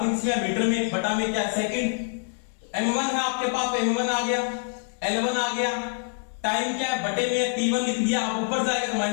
किसमें आया, मीटर में, बटा में क्या है, सेकंड। m1 है आपके पास, m1 आ गया, L1 आ गया, टाइम क्या है, बटे में T1 लिख दिया। अब ऊपर जाएगा तो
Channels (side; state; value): right; silent; 60 dB below the other